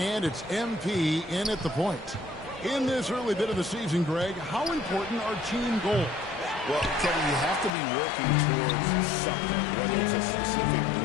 it's MP in at the point. In this early bit of the season, Greg, how important are team goals? Well, Kevin, you have to be working towards something, whether it's a specific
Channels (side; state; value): right; drops out; at 7.7 s